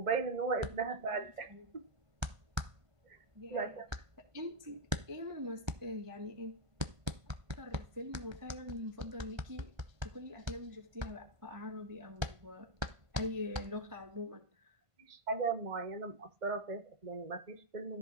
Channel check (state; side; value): late; left; 1.3 ms